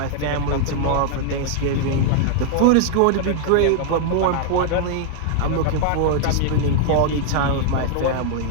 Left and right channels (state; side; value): different; both; correlation 0.00